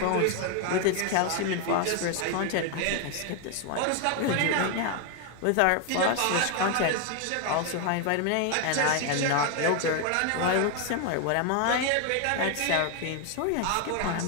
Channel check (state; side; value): different; both; correlation 0.01